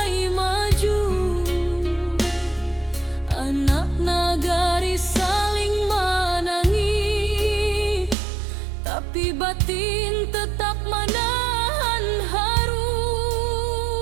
maju. Anak nagari saling menangis, tapi batin tetap menahan haru.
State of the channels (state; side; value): drops out; left; at 8.2 s